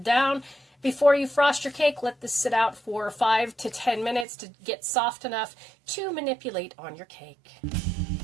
down. Before you frost your cake, let this sit out for 5 to 10 minutes to get soft enough to manipulate on your cake.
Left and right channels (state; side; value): drops out; left; at 4.2 s